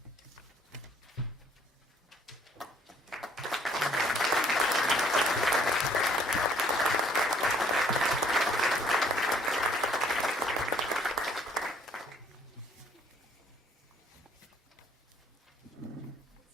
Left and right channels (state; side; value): normal; both; correlation 0.61